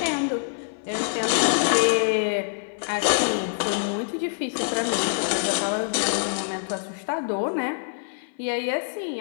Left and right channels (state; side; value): silent; right; 56 dB below the other